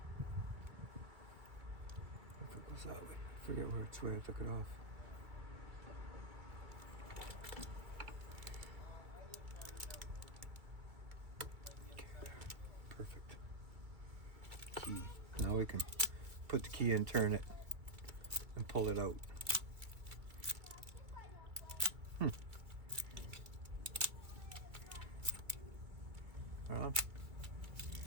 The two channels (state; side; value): late; left; 1.9 ms